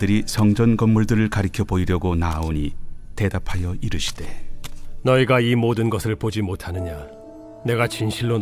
성전 건물들을 가리켜 보이려고 나아오니 대답하여 이르시되, 너희가 이 모든 것을 보지 못하느냐? 내가 진실로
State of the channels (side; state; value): both; identical; correlation 1.00